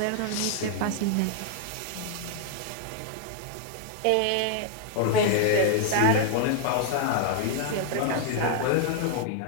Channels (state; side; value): different; both; correlation 0.00